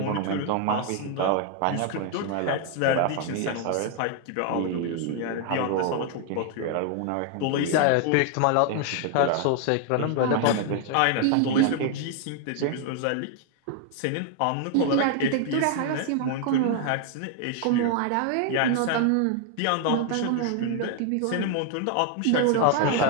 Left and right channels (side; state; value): both; different; correlation 0.00